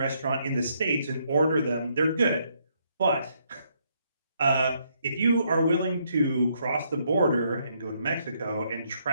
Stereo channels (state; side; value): inverted; both; correlation -0.73